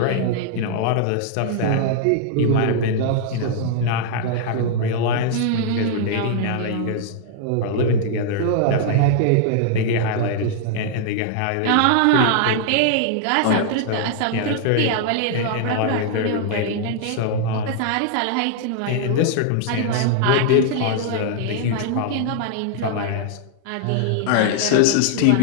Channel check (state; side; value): different; both; correlation -0.01